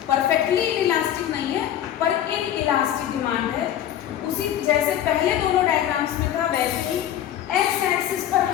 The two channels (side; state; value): right; quieter; 11.1 dB